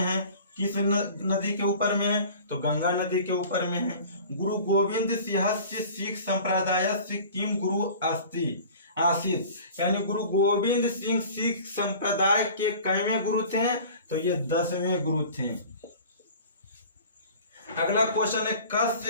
किस नदी के ऊपर में है? तो गंगा नदी के ऊपर में है। गुरु गोविंद सिंहस्य सिख संप्रदायस्य किम गुरु अस्ति आसीत्, यानी गुरु गोविंद सिंह सिख संप्रदाय के कैवें गुरु थे? तो ये 10वें गुरु थे। अगला क्वेश्चन है,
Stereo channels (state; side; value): inverted; both; correlation -0.43